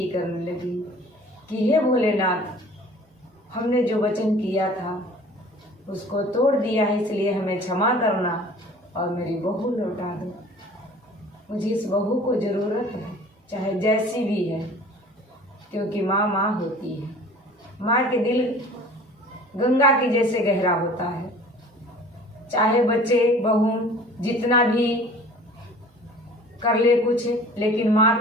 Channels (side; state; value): both; normal; correlation 0.46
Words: करने लगी कि हे भोलेनाथ, हमने जो वचन किया था उसको तोड़ दिया है, इसलिए हमें क्षमा करना और मेरी बहू लौटा दो। मुझे इस बहू को ज़रूरत है, चाहे जैसी भी है, क्योंकि माँ माँ होती है। माँ के दिल गंगा के जैसे गहरा होता है। चाहे बच्चे बहू जितना भी कर ले कुछ, लेकिन माँ